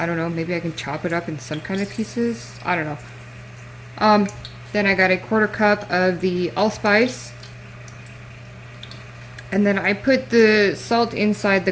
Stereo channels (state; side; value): identical; both; correlation 1.00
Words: don't know. Maybe I can chop it up in some kind of pieces. I don't know. Then I got a 1/4 cup of the allspice. And then I put the salt inside the